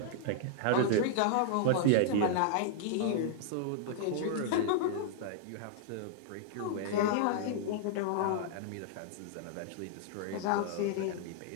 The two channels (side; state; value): both; different; correlation -0.01